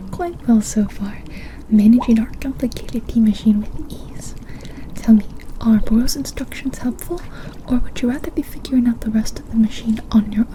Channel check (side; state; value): both; identical; correlation 1.00